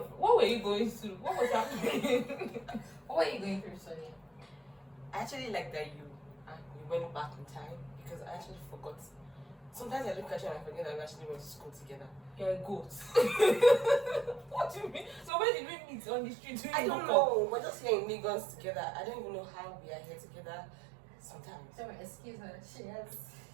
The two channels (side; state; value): left; drops out; at 15.3 s